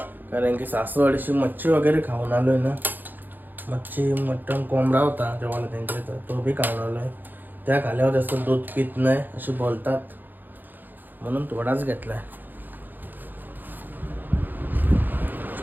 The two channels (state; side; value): late; left; 0.088 ms